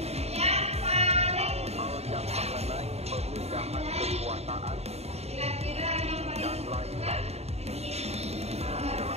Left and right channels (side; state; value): left; late; 0.30 ms